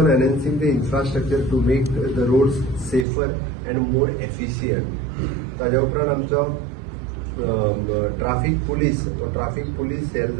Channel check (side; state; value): left; drops out; at 3.1 s